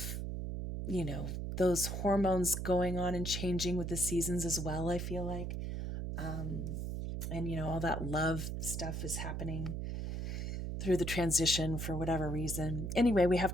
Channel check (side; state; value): right; noise; hum, 3 dB below the sound